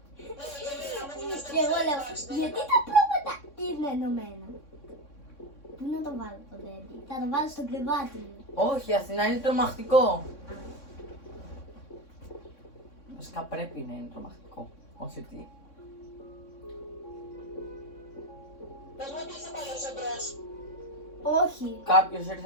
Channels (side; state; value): right; late; 3.6 ms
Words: Και εγώ λέω, γιατί τα πρόβατα είναι ενωμένα. Πού να το βάλω το teddy. Θα το βάλω στο κρεβάτι μου. Όχι, η Αθηνά είναι τρομακτικό. Βασικά πρέπει να είναι τρομακτικό. Όχι ότι. Πες μου ότι ήρθε πάλι ο Ζεμπρός. Όχι. Κάποιος